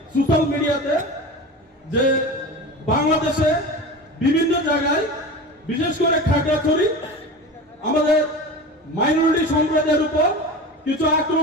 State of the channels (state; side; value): normal; both; correlation 0.31